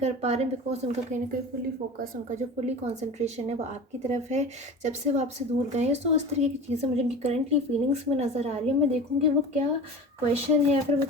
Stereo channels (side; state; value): both; normal; correlation 0.34